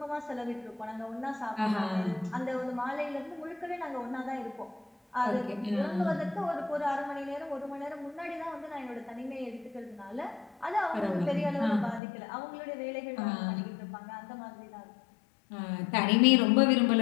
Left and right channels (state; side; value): drops out; right; at 12.0 s